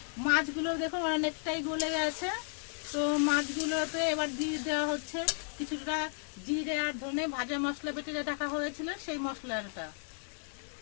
মাছগুলো দেখুন অনেকটাই গলে গেছে। তো মাছগুলোতে এবার দিয়ে দেওয়া হচ্ছে কিছুটা জিরে আর ধনে ভাজা মশলা বেটে রাখা হয়েছিল সেই মশলাটা।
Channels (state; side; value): silent; right; 55 dB below the other